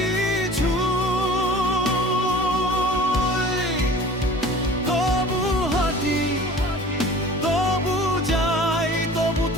তবু হাঁটি, তবু যাই, তবু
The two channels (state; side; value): normal; both; correlation 0.44